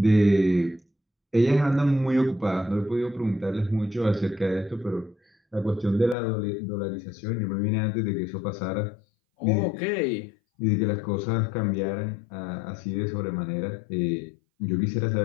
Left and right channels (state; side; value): drops out; right; at 6.2 s